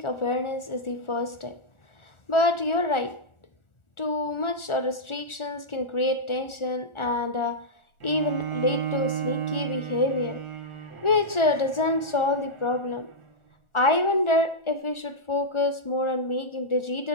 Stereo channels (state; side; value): late; right; 1.4 ms